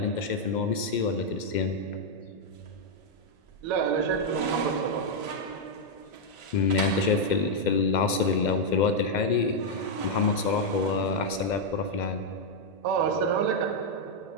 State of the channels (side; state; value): right; late; 2.1 ms